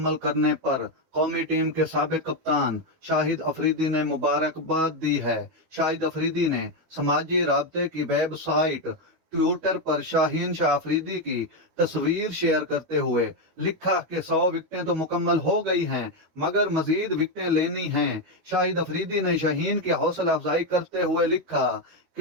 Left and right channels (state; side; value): late; left; 12 ms